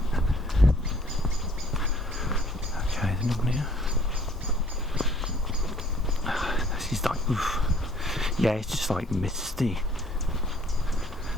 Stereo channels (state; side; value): normal; both; correlation 0.58